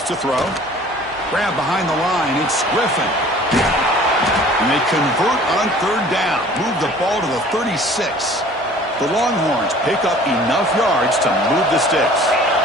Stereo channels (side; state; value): both; normal; correlation 0.49